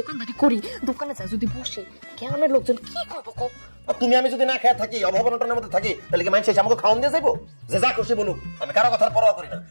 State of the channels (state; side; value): inverted; both; correlation -1.00